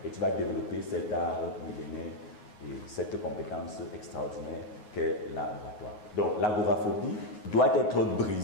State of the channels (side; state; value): right; late; 9.6 ms